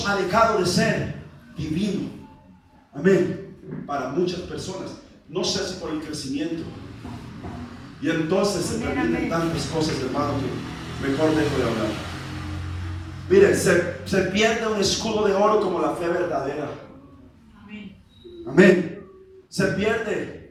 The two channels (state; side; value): identical; both; correlation 1.00